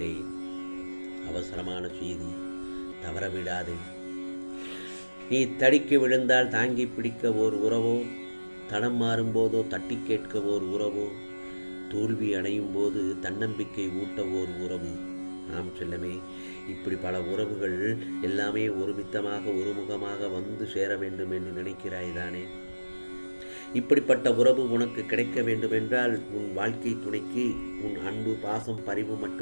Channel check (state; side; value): inverted; both; correlation -1.00